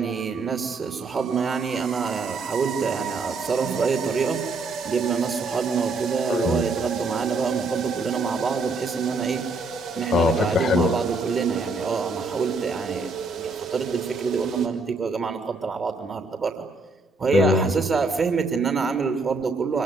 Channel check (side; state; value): left; quieter; 3.4 dB